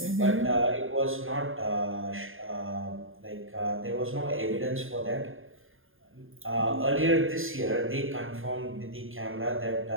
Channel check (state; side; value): late; left; 0.59 ms